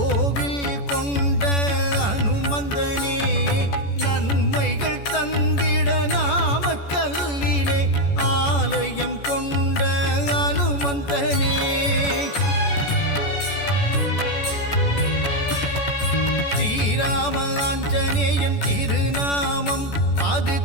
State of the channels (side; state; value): right; late; 14 ms